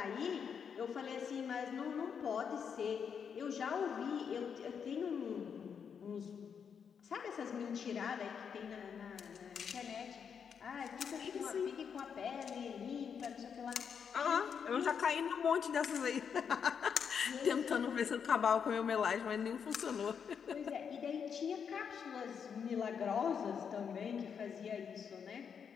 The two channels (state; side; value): quieter; right; 7.0 dB